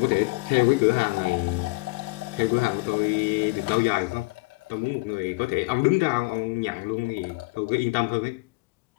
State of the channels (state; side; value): quieter; right; 26.2 dB